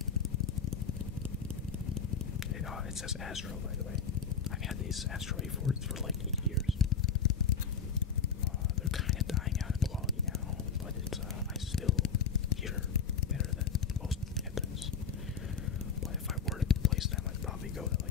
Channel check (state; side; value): quieter; right; 6.4 dB